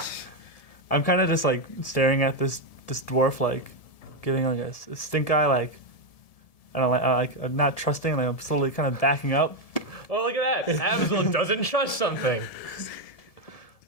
I'm kind of just like staring at this dwarf, like giving like a stink eye, like I don't like I'm not trusting, like I'm slowly kind of backing up. Oh, look at that. Abzael doesn't trust something.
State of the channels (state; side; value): late; right; 1.7 ms